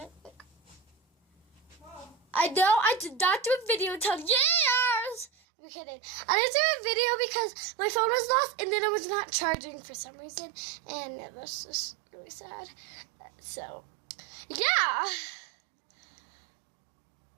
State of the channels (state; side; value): drops out; left; at 5.3 s